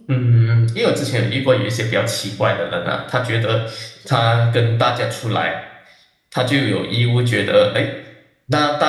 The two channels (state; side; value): identical; both; correlation 1.00